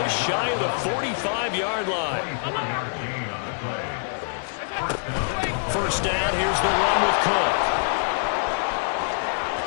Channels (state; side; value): silent; right; digital silence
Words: shy of the 45-yard line. 1st down, here's the run with Cook.